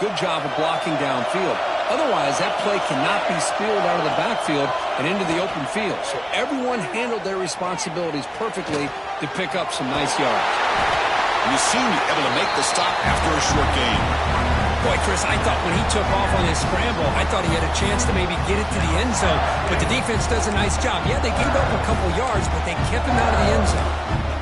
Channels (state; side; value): identical; both; correlation 1.00